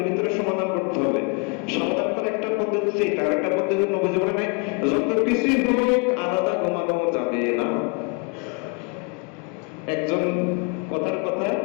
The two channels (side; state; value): right; quieter; 33.5 dB